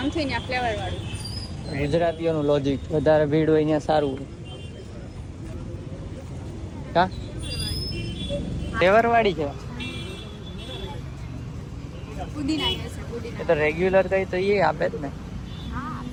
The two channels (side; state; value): both; identical; correlation 1.00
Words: ને ફ્લેવર વાળું. ગુજરાતીઓનું લોજિક, વધારે ભીડ હોય અહીંયા સારું હોય. કા ફ્લેવર વાળી છે એ તો રેગ્યુલર કઈ તો એ આપે જ ને.